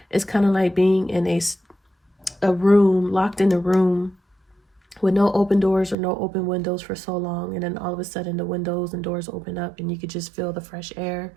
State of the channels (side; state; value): left; drops out; at 6.0 s